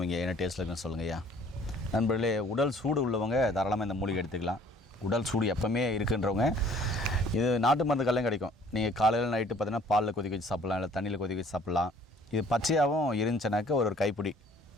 என்ன டேஸ்ட்டில் இருக்குன்னு சொல்லுங்கள் ஐயா. நண்பர்களே, உடல் சூடு உள்ளவங்க தாராளமாக இந்த மூலிகை எடுத்துக்கலாம். உடல் சூடு எப்போவுமே இருக்குன்றவங்க இது நாட்டு மருந்துக்கெல்லாம் கிடைக்கும். நீங்கள் காலையில் நைட்டு பார்த்தீங்கன்னா பாலில் கொதிக்க வச்சு சாப்பிட்லாம், இல்லை தண்ணியில் கொதிக்க வச்சு சாப்பிட்லாம். இது பச்சையாகவும் இருந்துச்சுனாக்க ஒரு கைப்பிடி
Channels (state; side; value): normal; both; correlation 0.56